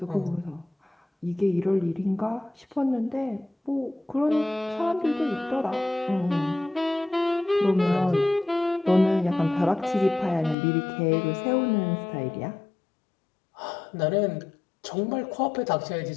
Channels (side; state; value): right; drops out; at 10.6 s